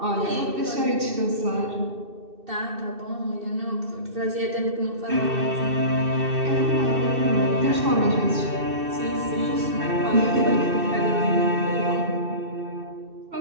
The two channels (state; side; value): late; left; 2.6 ms